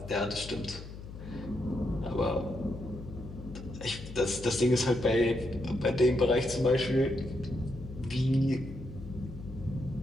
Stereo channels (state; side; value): noise; left; hum, 12 dB below the sound